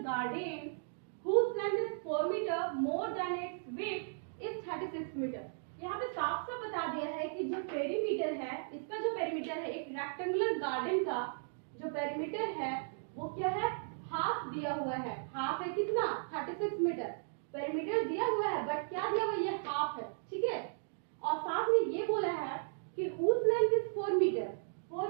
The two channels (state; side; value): silent; left; digital silence